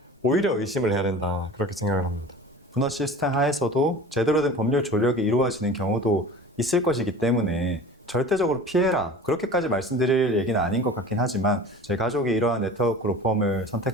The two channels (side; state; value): both; normal; correlation 0.39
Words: 오히려 의심을 해야 된다, 그렇게 생각을 합니다. 분화 시스템 하에서도 제대로 된 법률 조력이 이루어지는 경우도 있을 것이기 때문에 절대적으로 피해라, 그렇게까지 말씀드릴 얘기는 아닌 것 같긴 하지만, 제 가족이 이러한 네트워크 로펌을